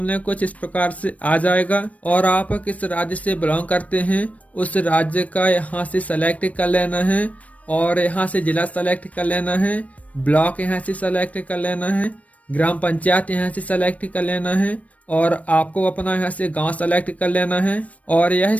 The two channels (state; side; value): late; right; 0.067 ms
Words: कुछ इस प्रकार से आ जाएगा और आप किस राज्य से बिलोंग करते हैं उस राज्य का यहाँ से सेलेक्ट कर लेना है और यहाँ से जिला सेलेक्ट कर लेना है, ब्लॉक यहाँ से सेलेक्ट कर लेना है, ग्राम पंचायत यहाँ से सेलेक्ट कर लेना है और आपको अपना यहाँ से गांव सेलेक्ट कर लेना है। और यह